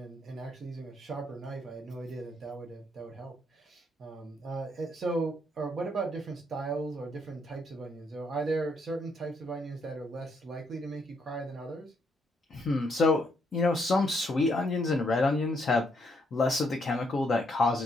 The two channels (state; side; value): normal; both; correlation 0.74